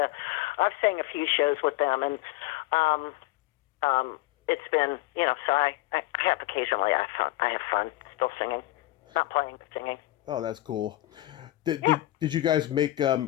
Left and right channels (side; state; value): right; quieter; 17.1 dB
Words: sang a few shows with them, and it's been so I have occasionally I have fun still singing, not playing but singing. Oh, that's cool. Did Yeah. did, did you guys make